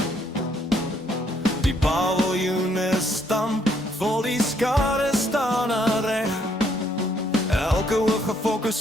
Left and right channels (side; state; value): both; normal; correlation 0.70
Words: Die paviljoene stamp, vol die skare staan aan reg. Elke oog gefokus